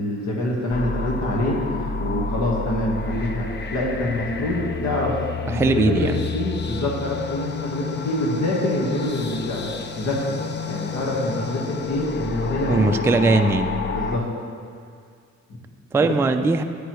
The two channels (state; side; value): normal; both; correlation 0.52